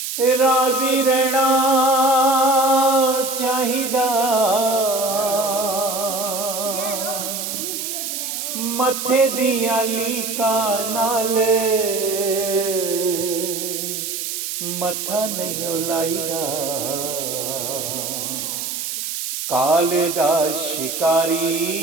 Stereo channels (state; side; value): noise; right; hiss, 4 dB below the sound